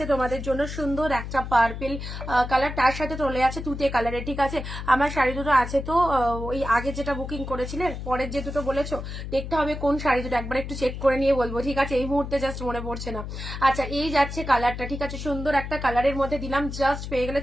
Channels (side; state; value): left; noise; hum, 7 dB below the sound